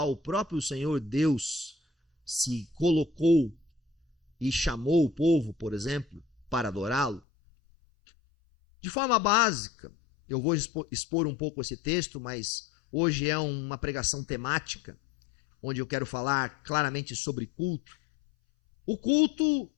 o próprio Senhor Deus se colocou e chamou o povo, por exemplo, para adorá-lo? De forma básica, eu vou expor um pouco esse texto, mas hoje é uma pregação temática, onde eu quero falar claramente sobre culto. O culto,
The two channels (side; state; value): right; drops out; at 7.2 s